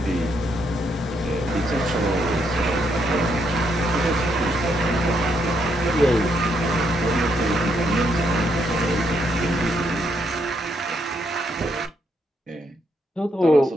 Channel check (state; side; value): normal; both; correlation 0.76